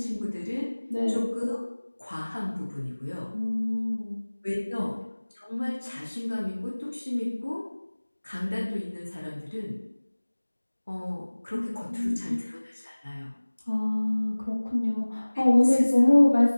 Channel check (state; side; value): inverted; both; correlation -1.00